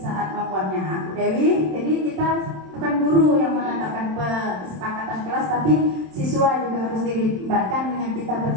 membuatnya Bu Dewi. Jadi kita bukan guru yang menetapkan kesepakatan kelas, tapi siswa juga harus dilibatkan dengan kita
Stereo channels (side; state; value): left; late; 27 ms